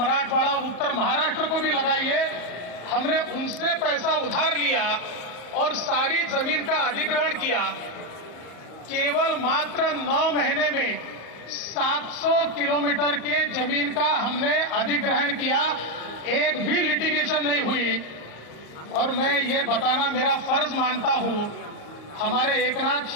उत्तर महाराष्ट्र को भी लगाइए। हमने उनसे पैसा उधार लिया और सारी जमीन का अधिग्रहण किया। केवल मात्र 9 महीने में 700 किलोमीटर के जमीन का हमने अधिग्रहण किया, एक भी लिटिगेशन नहीं हुई। और मैं ये बताना मेरा फर्ज मानता हूं, हमारे एकनाथ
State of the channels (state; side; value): late; right; 34 ms